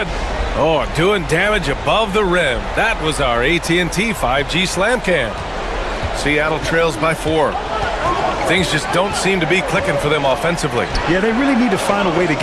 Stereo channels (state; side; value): identical; both; correlation 1.00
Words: Oh, doing damage above the rim. That was our AT&T 5G slam cam. Seattle trails by 4. Things just don't seem to be clicking for them offensively. Yeah, they really need to find a way to